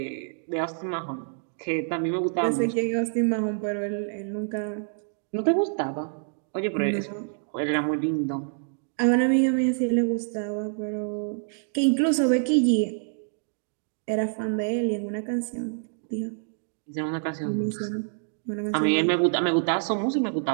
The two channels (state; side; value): silent; left; digital silence